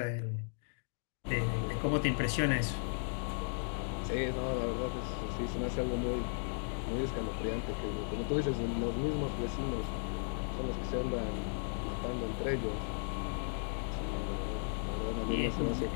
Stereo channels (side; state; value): right; silent; digital silence